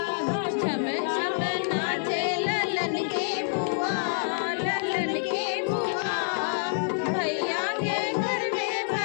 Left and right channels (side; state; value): right; silent; digital silence